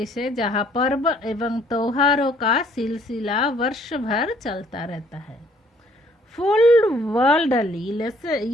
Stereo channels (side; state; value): both; normal; correlation 0.62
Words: है जहाँ पर्व एवं त्योहारों का सिलसिला वर्ष भर चलता रहता है. फुल वर्ल्ड ಅಲ್ಲಿ